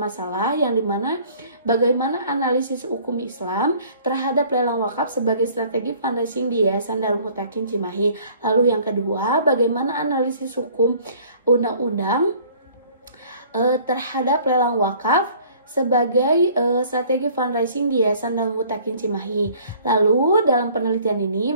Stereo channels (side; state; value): both; inverted; correlation -0.54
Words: yang dimana bagaimana analisis hukum Islam terhadap lelang wakaf sebagai strategi fundraising di Yayasan Darul Mutakin Cimahi. Lalu yang kedua, bagaimana analisis hukum undang-undang terhadap lelang wakaf sebagai strategi fundraising di Yayasan Darul Mutakin Cimahi. Lalu dalam penelitian ini